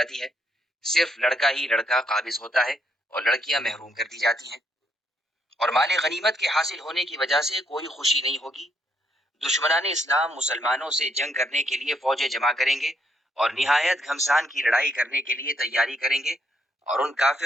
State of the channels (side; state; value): both; normal; correlation 0.74